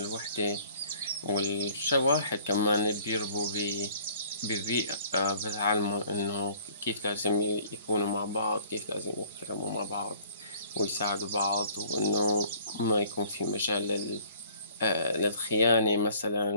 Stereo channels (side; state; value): both; inverted; correlation -0.55